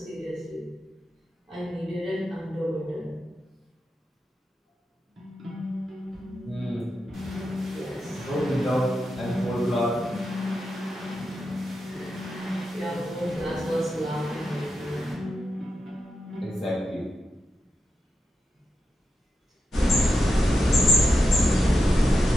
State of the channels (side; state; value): both; normal; correlation 0.88